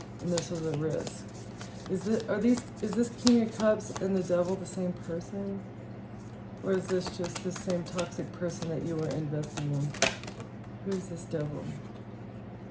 and this was a risk. Is this King of Cups and the devil the same person? Or is this just the same toxic person that you were investing in? Who is this devil?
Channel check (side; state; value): both; identical; correlation 1.00